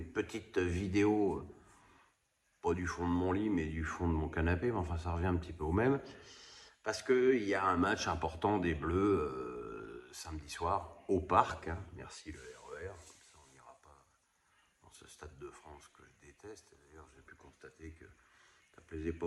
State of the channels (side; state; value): both; identical; correlation 1.00